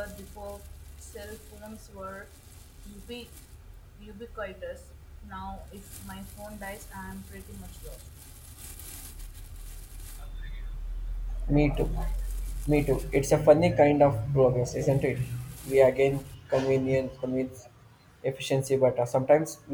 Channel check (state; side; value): identical; both; correlation 1.00